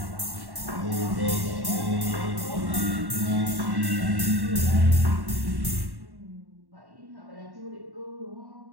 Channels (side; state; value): left; late; 1.1 ms